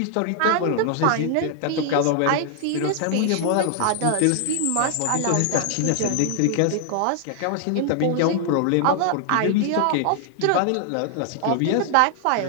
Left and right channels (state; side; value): different; both; correlation 0.00